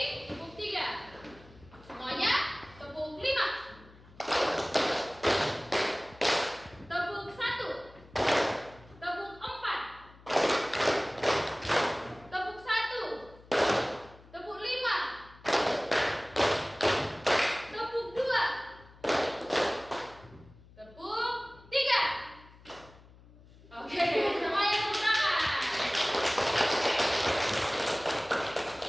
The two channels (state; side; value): noise; left; hum, 23 dB below the sound